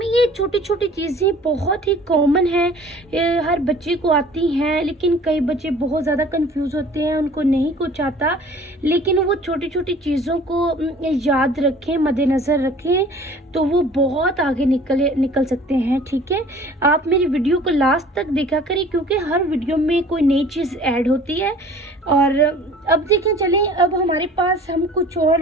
छोटी छोटी चीज़ें बहुत ही कॉमन है, हर बच्चे को आती हैं, लेकिन कई बच्चे बहुत ज़्यादा कंफ्यूज होते हैं, उनको नहीं कुछ आता। लेकिन वो छोटी छोटी चीज़ों को याद रखें, मद्देनज़र रखें, तो वो बहुत आगे निकल सकते हैं, ठीक है। आप मेरी वीडियो को लास्ट तक देखा करें, क्योंकि हर वीडियो में कोई नई चीज़ ऐड होती है। और अब देखें, चलें अब हमारे पास हम कुछ और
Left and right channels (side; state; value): both; normal; correlation 0.48